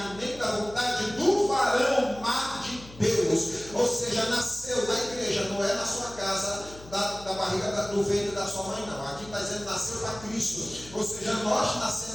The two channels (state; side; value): noise; left; hum, 18 dB below the sound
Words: nem da vontade do varão, mas de Deus. Ou seja, nasceu na igreja, não é na sua casa, da barriga do ventre da sua mãe, não. Aqui está dizendo nasceu para Cristo. Ou seja, nós